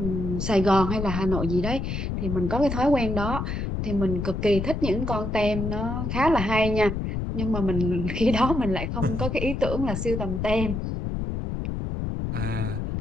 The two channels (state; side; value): noise; left; rumble, 3 dB below the sound